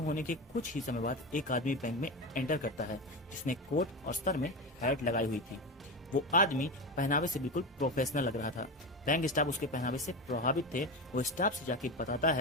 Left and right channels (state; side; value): normal; both; correlation 0.21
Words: होने के कुछ ही समय बाद एक आदमी बैंक में एंटर करता है जिसने कोट और सर में हैट लगाई हुई थी। वो आदमी पहनावे से बिल्कुल प्रोफेशनल लग रहा था। बैंक स्टाफ उसके पहनावे से प्रभावित थे। वो स्टाफ से जाके बताता